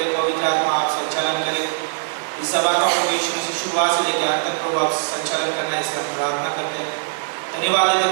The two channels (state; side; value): silent; left; digital silence